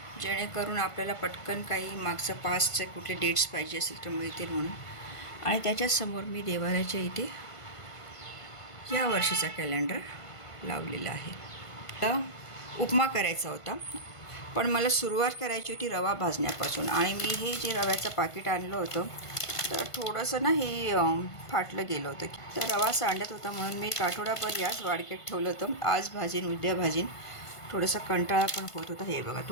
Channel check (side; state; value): right; late; 1.5 ms